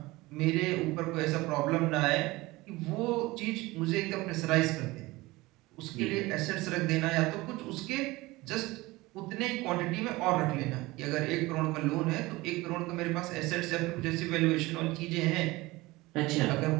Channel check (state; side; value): quieter; left; 20.7 dB